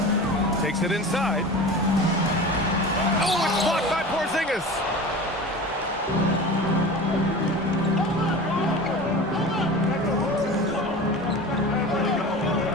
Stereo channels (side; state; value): both; normal; correlation 0.34